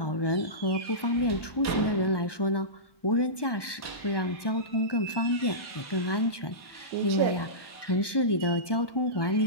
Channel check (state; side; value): late; right; 1.2 ms